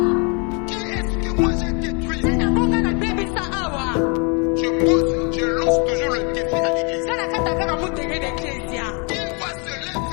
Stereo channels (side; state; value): right; quieter; 34.5 dB